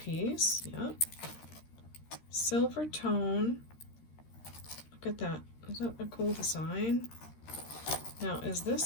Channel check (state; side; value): late; right; 13 ms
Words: piece. Yep. Silver tone. Look at that. Is that a cool design? Now, is